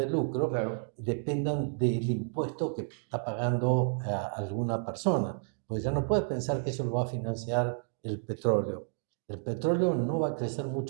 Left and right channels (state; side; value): silent; left; digital silence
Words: lucro, Claro. dependan del impuesto que está pagando a alguna persona. Pues ya no puedes pensar que eso lo va a financiar el petróleo. El petróleo no va a crecer